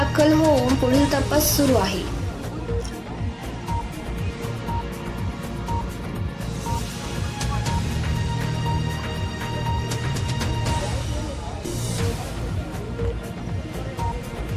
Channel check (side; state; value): both; identical; correlation 1.00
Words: होऊन पुढील तपास सुरू आहे.